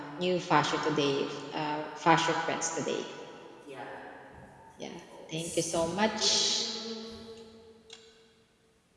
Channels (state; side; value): identical; both; correlation 1.00